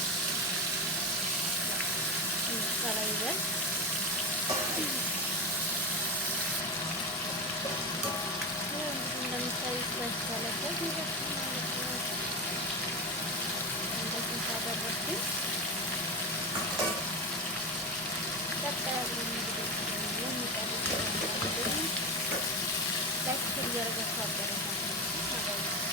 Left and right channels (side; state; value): both; normal; correlation 0.17